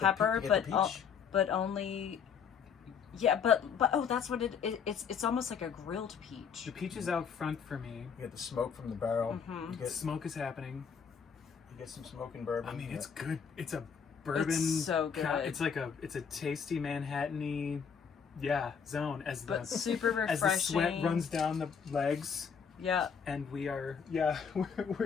pepper, pe- you but get the peach? but only. Yeah, but oh, that's what it's almost like a grilled peach. The peach is out front for me. You get the smoke from the barrel. Mhm. You Smoke is happening. get some smoke and bourbon. I mean, Yeah. it's good. It's a bourbon. It's so good. It's like it's a tasty Manhattan-y, zone as the But super refreshing. as the sweat runs down the legs, Yeah. and we are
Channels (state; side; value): quieter; right; 6.8 dB